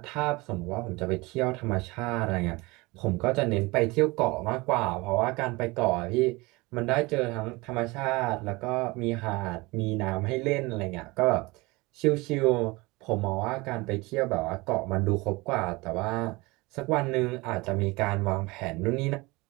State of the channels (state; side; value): quieter; left; 23.5 dB